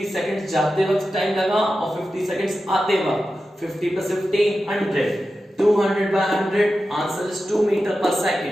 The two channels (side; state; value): both; normal; correlation 0.92